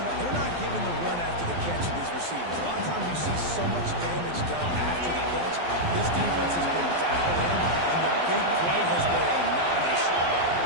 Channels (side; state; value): left; late; 12 ms